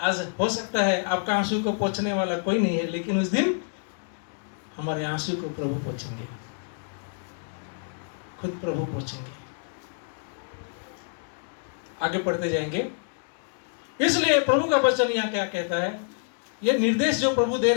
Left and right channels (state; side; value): silent; right; digital silence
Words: हो सकता है आपका आंसू को पोंछने वाला कोई नहीं है, लेकिन उस दिन हमारे आंसू को प्रभु पोंछेंगे, खुद प्रभु पोंछेंगे। आगे पढ़ते जाएंगे। इसलिए प्रभु का वचन यहाँ क्या कहता है? ये निर्देश जो प्रभु दे